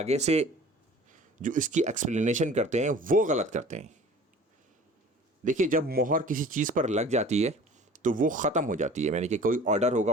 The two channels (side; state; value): both; normal; correlation 0.45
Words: سے جو اس کی ایکسپلینیشن کرتے ہیں وہ غلط کرتے ہیں۔ دیکھیے، جب مہر کسی چیز پر لگ جاتی ہے تو وہ ختم ہو جاتی ہے، یعنی کہ کوئی آرڈر ہوگا